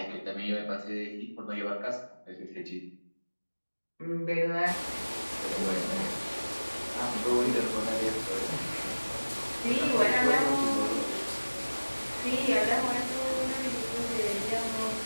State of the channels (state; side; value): inverted; both; correlation -1.00